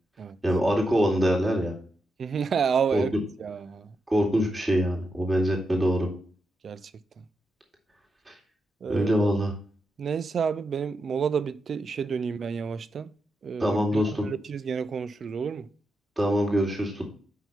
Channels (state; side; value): normal; both; correlation 0.86